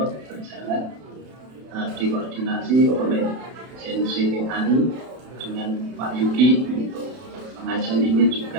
berjalan dikoordinasi oleh CNC Ani dengan Pak Yuki. Untuk pengajian ini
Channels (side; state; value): left; late; 31 ms